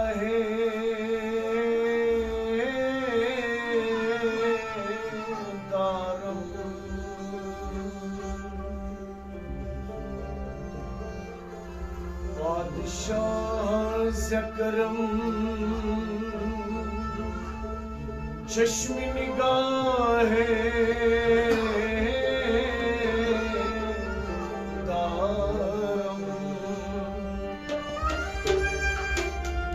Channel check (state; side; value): identical; both; correlation 1.00